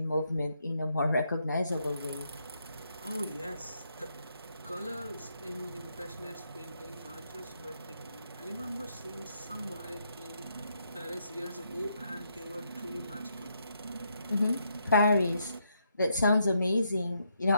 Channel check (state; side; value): inverted; both; correlation -0.77